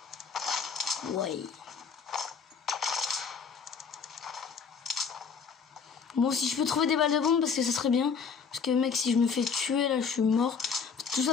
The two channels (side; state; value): right; quieter; 5.9 dB